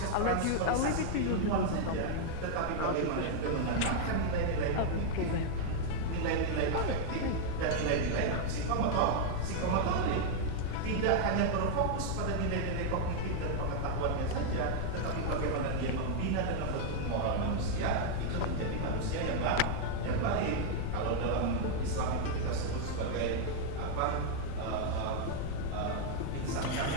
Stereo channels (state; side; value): different; both; correlation 0.00